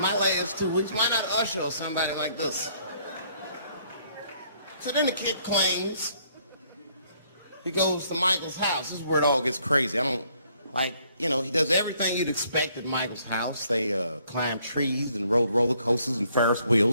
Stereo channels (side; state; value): both; inverted; correlation -0.66